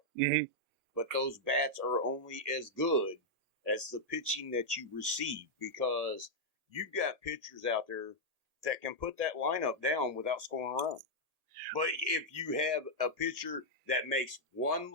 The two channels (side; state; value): left; late; 1.8 ms